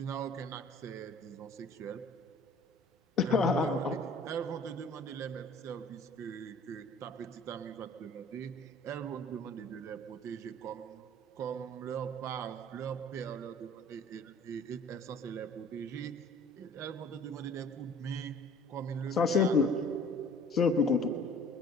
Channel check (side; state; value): both; normal; correlation 0.49